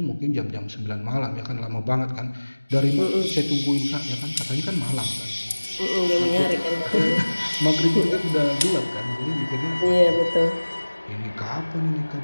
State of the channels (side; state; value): both; inverted; correlation -1.00